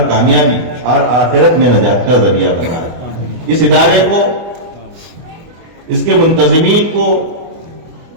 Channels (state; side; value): late; left; 24 ms